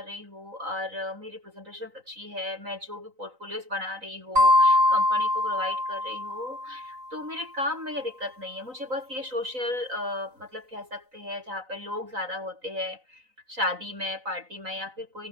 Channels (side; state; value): left; late; 3.9 ms